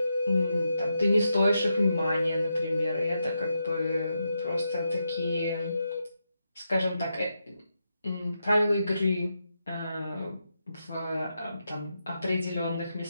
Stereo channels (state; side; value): inverted; both; correlation -0.85